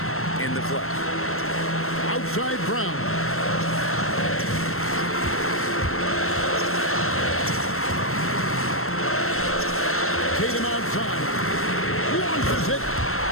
in the clutch. Outside Brown. Tatum outside. Launches it.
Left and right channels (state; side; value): late; right; 0.62 ms